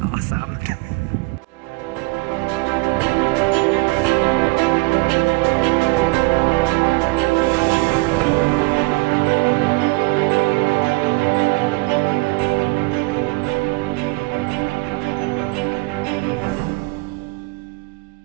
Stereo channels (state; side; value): quieter; left; 25.7 dB